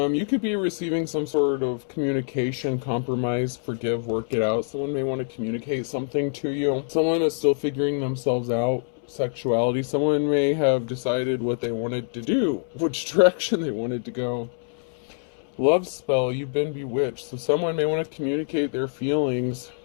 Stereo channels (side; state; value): right; silent; 62 dB below the other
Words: could be receiving some sort of communication, compromise, forgive, work it out. Someone may want to communicate something to you. Someone is still figuring themselves out. Sexuality. Someone may have decided what they wanted to do, which direction they wanted to go. Love spell, you've been bewitched. So someone may want to communicate their feelings.